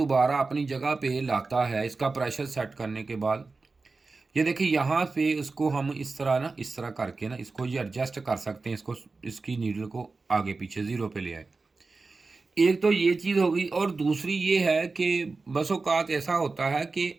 अपनी जगह पे लाता है इसका प्रेशर सेट करने के बाद। ये देखिए यहाँ पे इसको हम इस तरह करके ना इसको ये एडजस्ट कर सकते हैं, इसको इसकी नीडल को आगे पीछे ज़ीरो पे ले आए। एक तो ये चीज़ हो गई, और दूसरी ये है कि बस औक़ात ऐसा होता है कि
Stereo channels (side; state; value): left; quieter; 3.9 dB